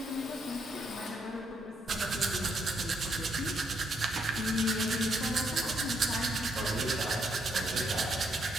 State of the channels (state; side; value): normal; both; correlation 0.75